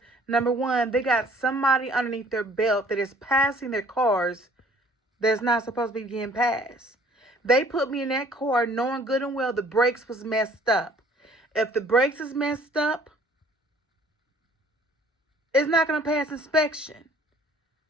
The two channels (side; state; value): both; normal; correlation 0.55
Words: number one, they got somebody underneath their belt that is passing their cars that's not supposed to be getting passed. They put me in that car knowing good and well the brakes was messed up. If the brakes is messed up, it's not going to pass inspection.